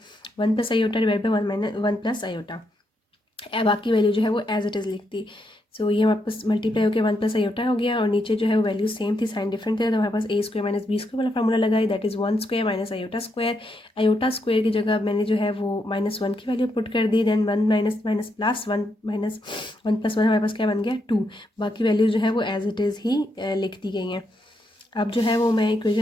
1 plus iota divide by 1 plus iota, बाकी वैल्यू जो है वो एज इट इज़ लिख दी। सो ये हमारे पास मल्टीप्लाई होकर 1 प्लस आयोटा हो गया और नीचे जो है वो वैल्यू सेम थी, साइन डिफरेंट थे, तो हमारे पास a square minus b square वाला फार्मूला लगाई, that is 1 square minus iota square. Iota square की जगह मैंने जो है वो -1 की वैल्यू पुट कर दी, then 1 minus minus plus 1 minus 1 plus 1 हमारे पास क्या बन गया 2। बाकी वैल्यू जो है वो एज इट इज़ ही लिख दी गई हैं। अब जो है वो मैं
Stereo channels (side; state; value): both; normal; correlation 0.80